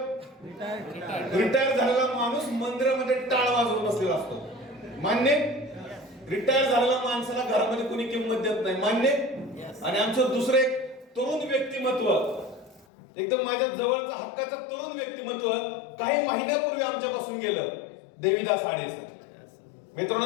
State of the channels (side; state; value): right; drops out; at 12.9 s